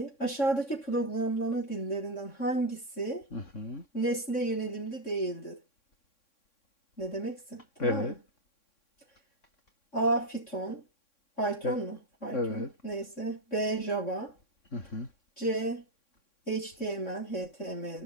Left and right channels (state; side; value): late; right; 3.6 ms